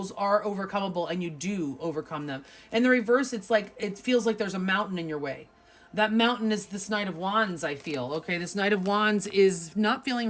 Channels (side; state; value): both; identical; correlation 1.00